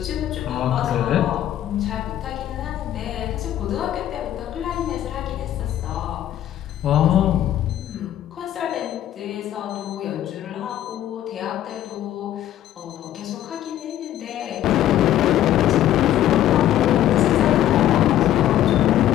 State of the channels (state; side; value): quieter; right; 12.1 dB